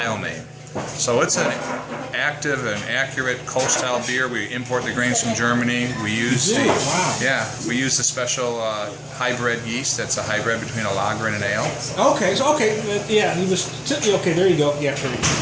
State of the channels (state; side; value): identical; both; correlation 1.00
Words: name. So it's an active and accurate Kolsch-style beer. We import the grains from Germany. We use we use the special hybrid yeast. That's a hybrid between a lager and an ale. Okay, so okay, there you go. Yeah, there you